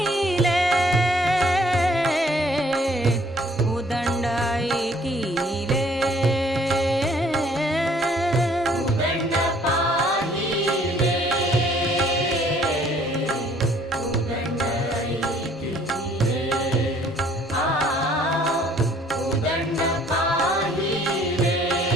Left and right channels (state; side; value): normal; both; correlation 0.60